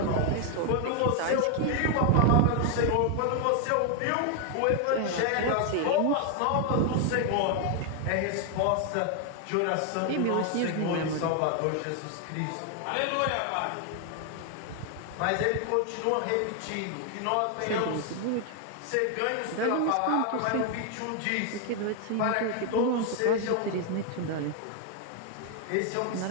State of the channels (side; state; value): both; different; correlation 0.01